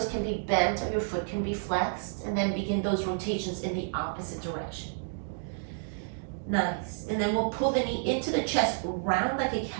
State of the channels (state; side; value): silent; left; digital silence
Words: can be bent or your foot can be flexed, and then begin those rotations in the opposite direction. Nice. And then we'll pull the knee into the chest, round like a